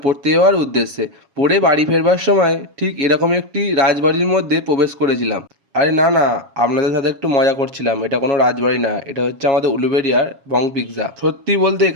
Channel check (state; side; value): late; left; 7.3 ms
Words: পড়তে যাওয়ার উদ্দেশ্যে। পড়ে বাড়ি ফেরবার সময় ঠিক এরকম একটি রাজবাড়ির মধ্যে প্রবেশ করেছিলাম। আরে না না, আপনাদের সাথে একটু মজা করছিলাম। এটা কোনো রাজবাড়ি না, এটা হচ্ছে আমাদের উলুবেড়িয়ার বং পিৎজা। সত্যি বলতে